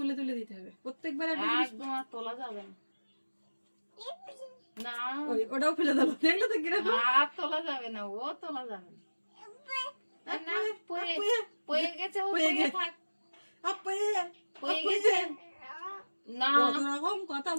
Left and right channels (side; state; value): both; inverted; correlation -1.00